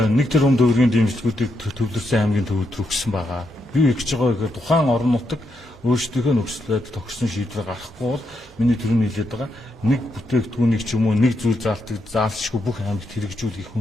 тэрбум төгрөгийн дэмжлэгүүдийг төвлөрсөн аймгийн төвөд өгсөн байгаа. Би их гэж байгаа гэхээр тухайн орон нутаг өөрсдийнхөө нөхцөлөд тогтсон шийдвэр гаргахгүй бол миний төрөний хэлээд байгаа нэг бүтээгдэхүүнийг ч юм уу нэг зүйл заалтшгүй бүх аймагт хэрэгжүүлэх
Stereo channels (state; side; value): normal; both; correlation 0.81